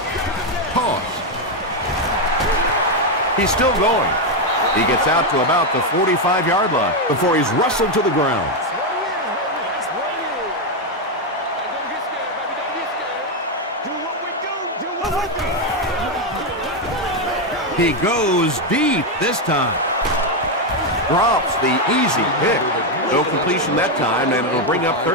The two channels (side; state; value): both; normal; correlation 0.05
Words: Pause. He's still going. He gets out to about the 45-yard line before he's wrestled to the ground. He goes deep this time. Drops the easy pick. No completion that time, and it'll bring up